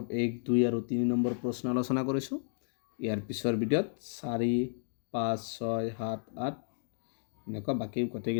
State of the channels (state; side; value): silent; right; digital silence